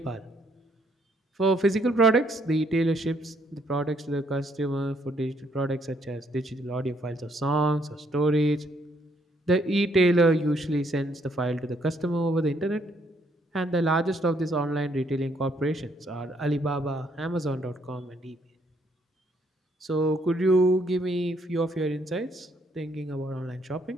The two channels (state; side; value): normal; both; correlation 0.70